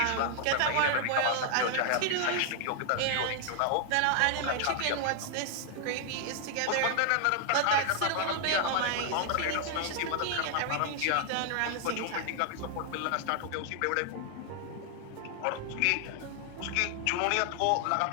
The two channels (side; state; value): both; different; correlation 0.00